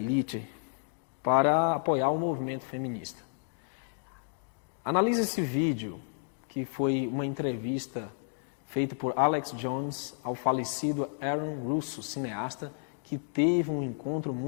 para apoiar o movimento feminista. Analise esse vídeo, que foi uma entrevista feita por Alex Jones ao falecido Aaron Russo, cineasta, que teve um encontro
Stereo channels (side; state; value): right; silent; digital silence